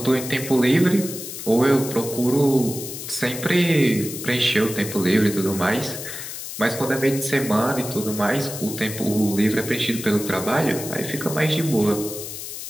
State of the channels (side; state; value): left; noise; hiss, 9 dB below the sound